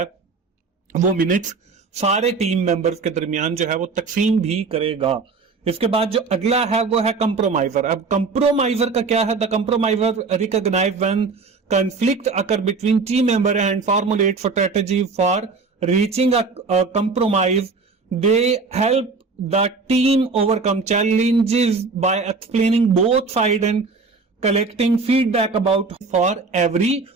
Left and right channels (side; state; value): left; quieter; 4.4 dB